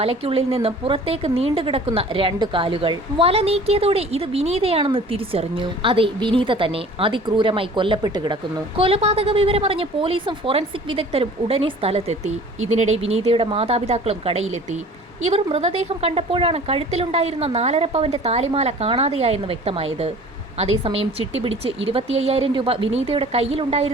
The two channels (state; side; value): normal; both; correlation 0.46